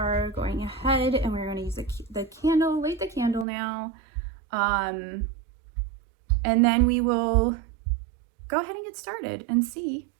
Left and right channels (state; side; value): drops out; left; at 3.5 s